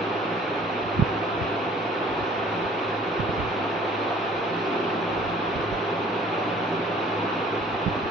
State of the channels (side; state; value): both; normal; correlation 0.53